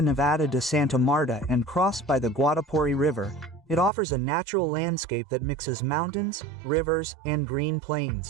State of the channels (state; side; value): drops out; left; at 3.9 s